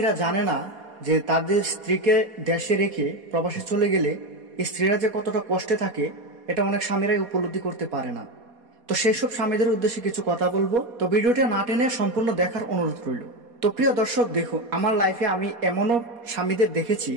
জানে না যে তাদের স্ত্রীকে দেশে রেখে প্রবাসে চলে গেলে স্ত্রীরা যে কতটা কষ্টে থাকে এটা অনেক স্বামীরাই উপলব্ধি করতে পারে না। তো সেই সব স্বামীদের উদ্দেশ্যে কিছু কথা বলবো। তো ভিডিওটা না টেনে সম্পূর্ণ দেখার অনুরোধ রইল। তো প্রিয় দর্শক, দেখুন, আমার লাইফে আমি এমনও স্বামীদের দেখেছি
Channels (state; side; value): late; left; 4.2 ms